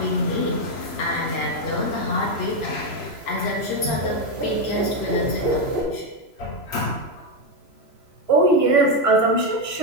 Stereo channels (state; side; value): late; right; 3.0 ms